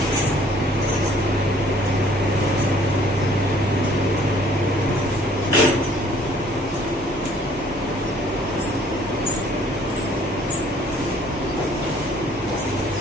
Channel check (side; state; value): both; normal; correlation 0.58